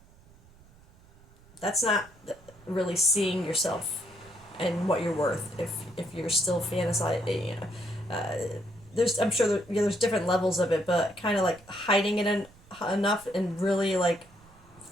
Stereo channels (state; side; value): noise; right; rumble, 26 dB below the sound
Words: that's not really seeing yourself and what you're worth if you're still fantasizing. There's I'm sure there's different levels of it, but kind of like hiding it enough and really like